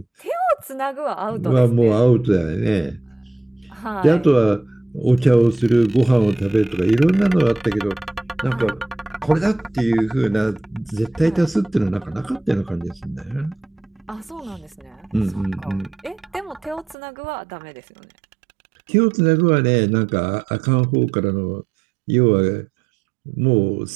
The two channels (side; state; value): left; drops out; at 16.9 s